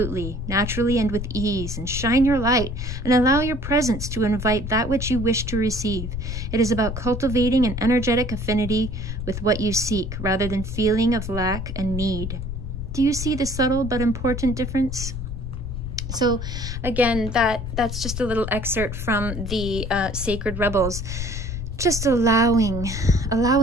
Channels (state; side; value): noise; left; rumble, 6 dB below the sound